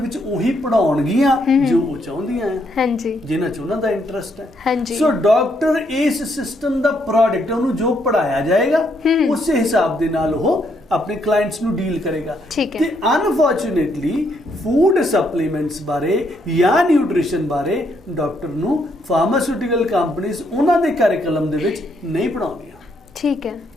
ਉਹੀ ਪੜ੍ਹਾਉਣਗੀਆਂ ਜੋ ਉਹ ਚਾਹੁੰਦੀਆਂ ਆ। ਹਾਂਜੀ। ਜਿਨ੍ਹਾਂ 'ਚ ਉਹਨਾਂ ਦਾ ਇੰਟਰਸਟ ਹੈ। ਹਾਂਜੀ। ਸੋ ਡਾਕਟਰ ਇਸ ਸਿਸਟਮ ਦਾ ਪ੍ਰੋਡਕਟ, ਉਹਨੂੰ ਜੋ ਪੜ੍ਹਾਇਆ ਜਾਏਗਾ ਉਸੇ ਹਿਸਾਬ ਦੇ ਨਾਲ ਉਹ ਆਪਣੇ ਕਲਾਇੰਟਸ ਨੂੰ ਡੀਲ ਕਰੇਗਾ। ਤੇ ਅਨਫੋਰਚੂਨੇਟਲੀ ਫੂਡ ਸਪਲੀਮੈਂਟਸ ਬਾਰੇ ਜਾਂ ਨਿਊਟ੍ਰੀਸ਼ਨ ਬਾਰੇ ਡਾਕਟਰ ਨੂੰ ਫਾਰਮਾਸਿਊਟੀਕਲ ਕੰਪਨੀਜ਼ ਉਹਨਾਂ ਦੇ ਕਰਿਕੂਲਮ ਦੇ ਵਿੱਚ ਨਹੀਂ ਪੜ੍ਹਾਉਂਦੀਆਂ। ਠੀਕ ਹੈ।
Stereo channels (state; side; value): normal; both; correlation 0.74